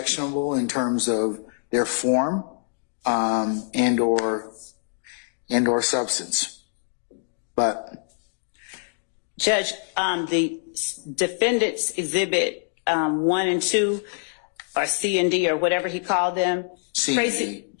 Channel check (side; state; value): right; silent; digital silence